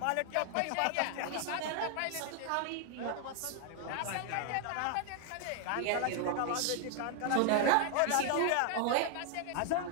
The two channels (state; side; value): different; both; correlation 0.00